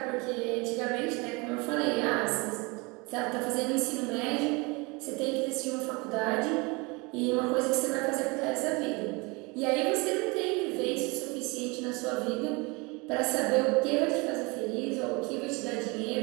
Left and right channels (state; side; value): quieter; left; 27.3 dB